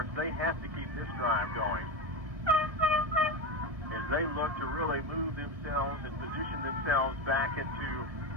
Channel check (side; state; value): left; late; 1.7 ms